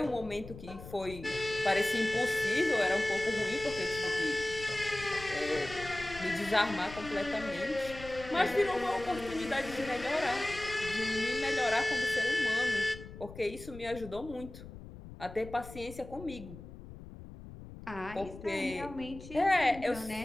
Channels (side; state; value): left; noise; rumble, 14 dB below the sound